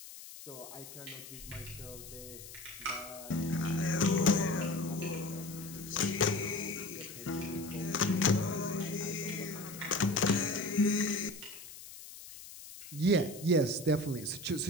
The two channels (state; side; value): noise; left; hiss, 14 dB below the sound